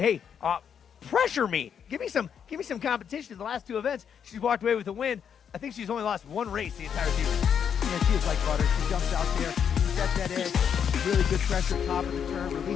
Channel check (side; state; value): right; quieter; 7.8 dB